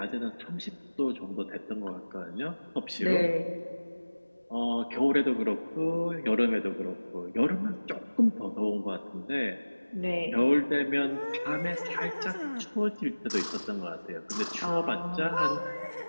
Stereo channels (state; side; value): inverted; both; correlation -1.00